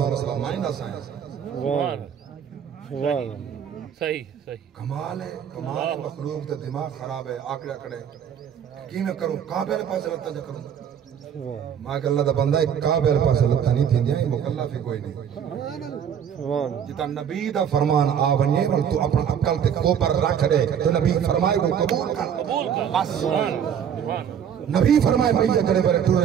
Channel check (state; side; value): quieter; left; 8.4 dB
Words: مسئلہ مائنہ سائنس سبحان اللہ صحیح صحیح کمال ہے مخلوق تے دماغ خراب ہے آکڑا کڑے کی میں کروں کعبے والے پاس لتا جا کروں ماں کہ اللہ دا بندہ ایک کعبے والے پاس لتا نہیں تھی جائیں مکلف ہی کوئی نہیں جتا نبی دا فرمان آونیے اور تو اپنا عقل تے کوپر رکھ دے تو نبی فرمائے کو قبول کر بس نبی فرمائے بھئی کرے برے